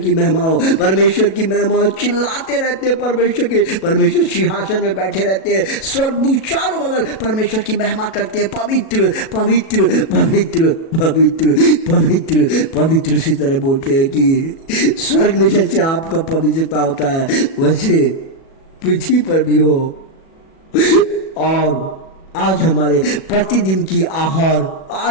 हो, चिल्लाते रहते हैं। परमेश्वर सिंहासन में बैठे रहते हैं, स्वर्गदूत चारों बगल परमेश्वर की महिमा करते हैं। पवित्र पवित्र पवित्र पवित्र पवित्र पवित्र इसी तरह बोलते हैं कि स्वर्ग में जैसे आपका पवित्रता होता है वैसे पृथ्वी पर भी हो। और आज हमारे प्रतिदिन की आहार,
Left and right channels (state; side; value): late; right; 37 ms